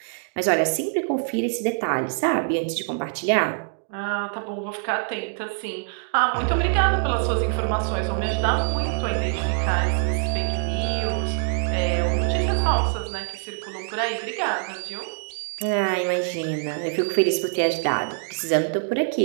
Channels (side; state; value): left; silent; digital silence